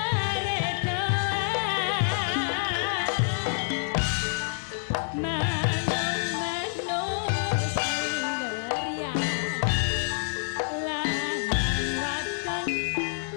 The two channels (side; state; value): right; silent; digital silence